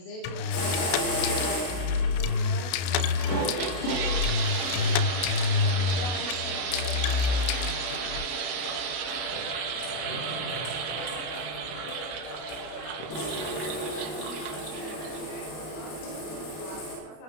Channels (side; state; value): right; late; 32 ms